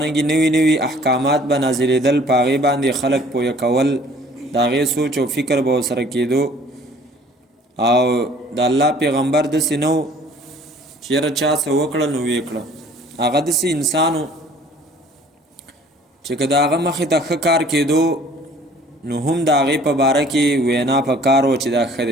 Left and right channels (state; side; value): normal; both; correlation 0.54